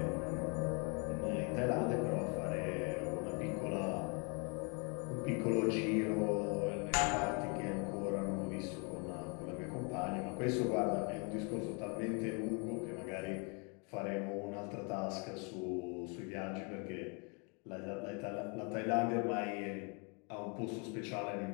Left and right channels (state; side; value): quieter; right; 34.6 dB